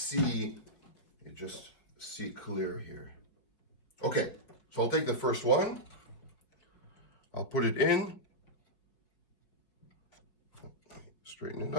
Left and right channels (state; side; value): late; right; 5.2 ms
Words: you just see clear here. Okay, so I'll take the first one. I'll put it in. Straighten it